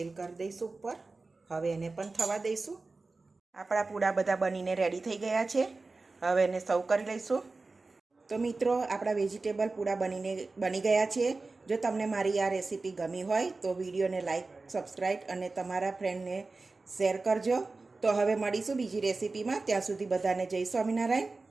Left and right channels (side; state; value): left; quieter; 3.6 dB